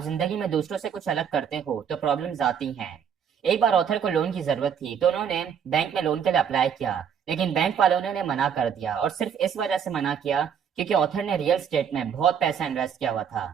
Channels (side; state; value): left; quieter; 7.8 dB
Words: जिंदगी में दूसरों से कुछ अलग करते हो तो प्रॉब्लम्स आती हैं। एक बार ऑथर को लोन की जरूरत थी, तो उन्होंने बैंक में लोन के लिए अप्लाई किया, लेकिन बैंक वालों ने उन्हें मना कर दिया, और सिर्फ इस वजह से मना किया क्योंकि ऑथर ने रियल स्टेट में बहुत पैसा इन्वेस्ट किया हुआ था।